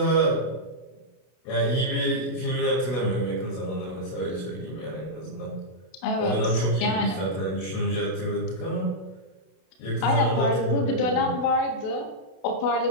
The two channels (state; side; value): late; right; 32 ms